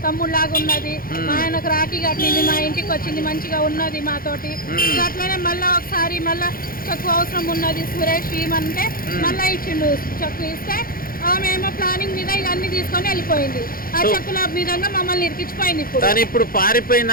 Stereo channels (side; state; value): right; late; 0.42 ms